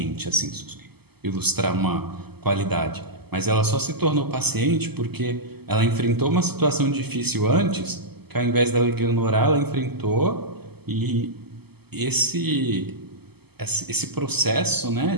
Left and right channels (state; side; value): late; left; 0.97 ms